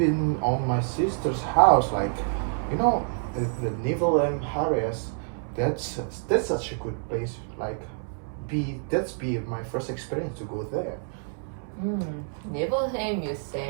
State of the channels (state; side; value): silent; left; 60 dB below the other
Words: on my sister's house, you know, the Naval areas. That's that's such a good place. Be my first experience to go there. Nibelheim, you